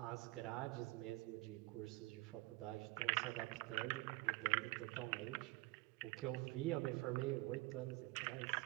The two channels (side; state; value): left; quieter; 21.8 dB